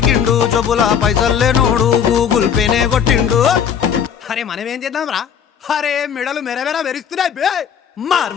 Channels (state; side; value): quieter; right; 8.0 dB